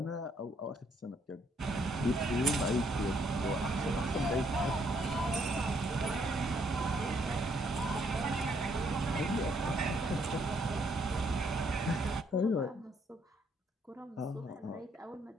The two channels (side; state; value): both; normal; correlation 0.70